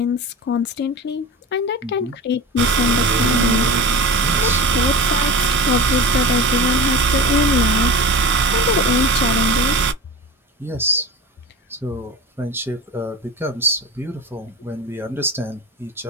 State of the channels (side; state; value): both; normal; correlation 0.30